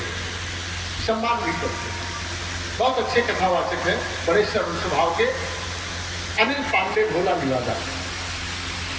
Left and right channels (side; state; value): both; identical; correlation 1.00